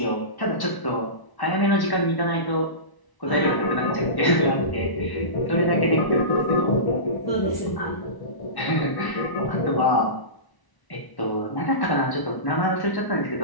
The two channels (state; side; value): late; right; 1.1 ms